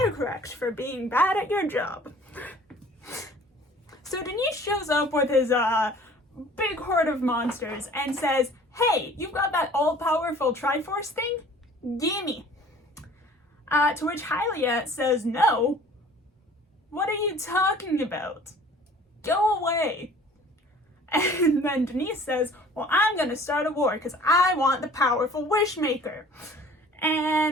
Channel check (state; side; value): normal; both; correlation 0.49